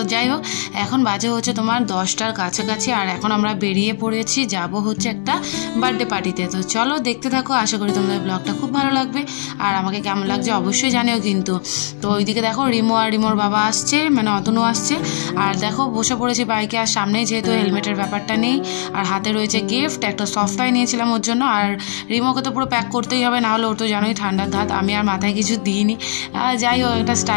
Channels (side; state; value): right; silent; 67 dB below the other